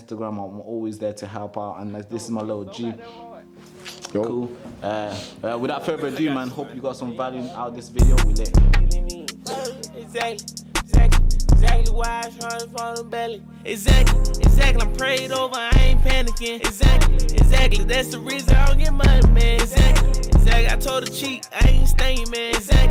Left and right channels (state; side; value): identical; both; correlation 1.00